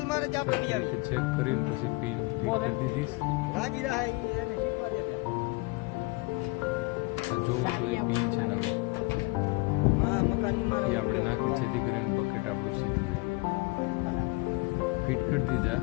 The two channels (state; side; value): quieter; right; 25.2 dB